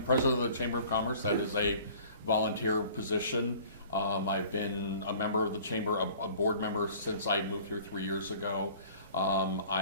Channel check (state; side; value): inverted; both; correlation -0.49